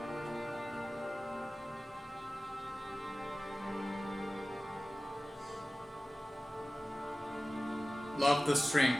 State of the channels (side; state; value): both; normal; correlation 0.97